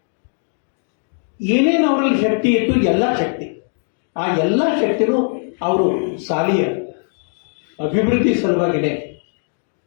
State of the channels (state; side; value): silent; right; 66 dB below the other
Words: ಏನೇನು ಅವರಲ್ಲಿ ಶಕ್ತಿ ಇತ್ತು, ಎಲ್ಲ ಶಕ್ತಿ, ಆ ಎಲ್ಲ ಶಕ್ತಿನೂ ಅವರು ಶಾಲೆಯ ಅಭಿವೃದ್ಧಿ ಸಲುವಾಗಿನೇ